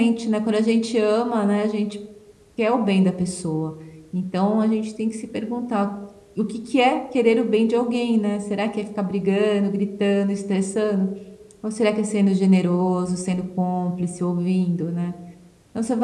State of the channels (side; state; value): both; identical; correlation 1.00